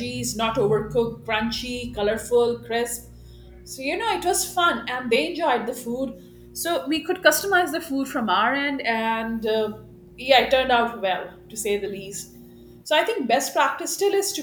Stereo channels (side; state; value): both; identical; correlation 1.00